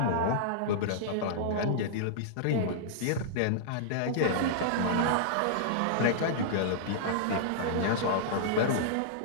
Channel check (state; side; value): different; both; correlation -0.02